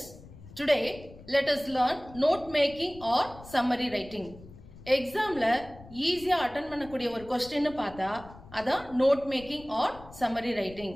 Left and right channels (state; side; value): noise; left; rumble, 19 dB below the sound